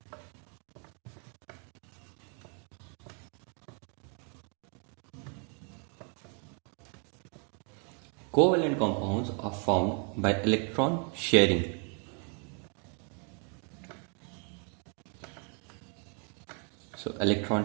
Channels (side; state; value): left; quieter; 39.1 dB